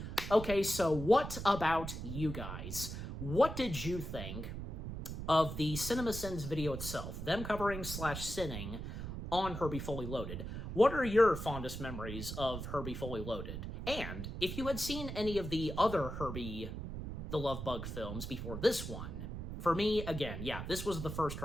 Okay, so what about you guys? What did you think of the CinemaSins video itself, them covering / sinning on Herbie Fully Loaded? What are your fondest memories of Herbie Fully Loaded? And if you had seen any of the other Herbie the Love Bug films before this one, for me, again, yeah, this was the first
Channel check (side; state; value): right; noise; rumble, 6 dB below the sound